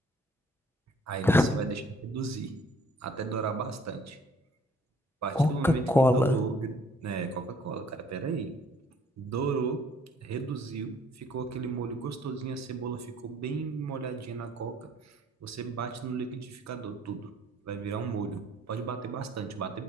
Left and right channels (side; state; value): both; normal; correlation 0.60